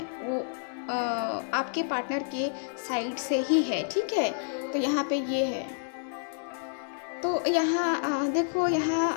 वो आपके पार्टनर के साइड से ही है, ठीक है। तो यहाँ पे ये है। तो यहाँ देखो,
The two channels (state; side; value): silent; right; digital silence